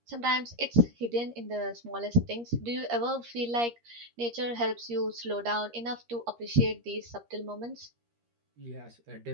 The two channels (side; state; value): left; late; 13 ms